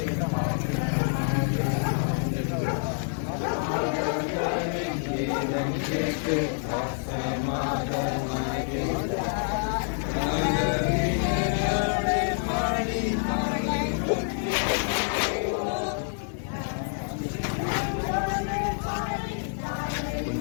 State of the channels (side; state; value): right; silent; 60 dB below the other